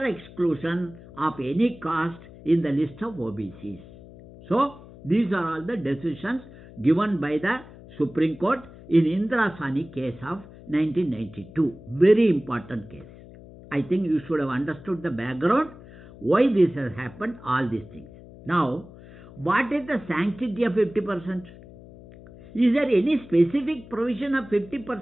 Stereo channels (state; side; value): noise; left; hum, 19 dB below the sound